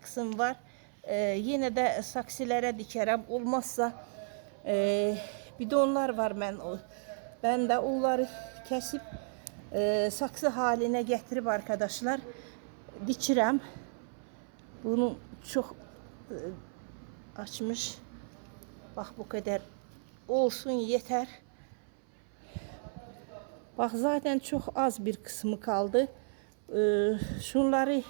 var. Yine de saksılara dikerim. Olmazsa bidonlar var ben de onları kesip saksı haline getirip arkadaşlar dikirəm. Bunu çok açmış. Bak bu kadar olsun yeter. Bak zaten çok az bir kısmı kaldı. Şunları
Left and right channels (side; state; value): left; silent; 55 dB below the other